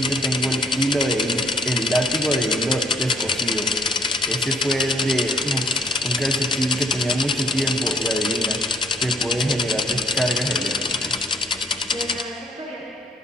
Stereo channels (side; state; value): both; normal; correlation 0.64